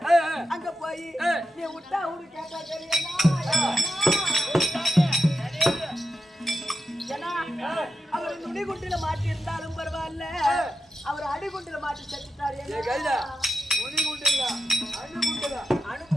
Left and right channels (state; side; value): normal; both; correlation 0.90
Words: அங்க போய் நீ விட்டா அவரு கேட்டா தெரியுமா, அவர் நுனிகுண்டில மாட்டி இருந்தாலும் பரவாயில்ல, அவர் அடிகுண்டில மாட்டி செத்துட்டாரு.